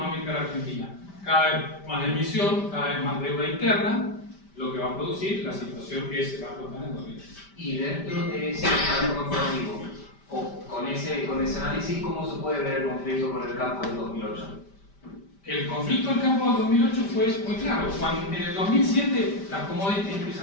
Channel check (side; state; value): right; late; 5.1 ms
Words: de la Argentina. Cada vez más emisión, cada vez más deuda interna, lo que va a producir la situación que se va a explotar en 2020. y dentro de ese pacto corporativo, o con ese análisis, ¿cómo se puede ver el conflicto con el campo del 2008? El conflicto del campo del 2008 fue muy claro. Cuando en el 2007 las commodities